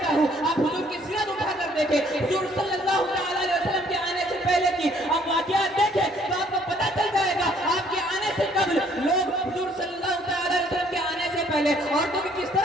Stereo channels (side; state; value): both; normal; correlation 0.63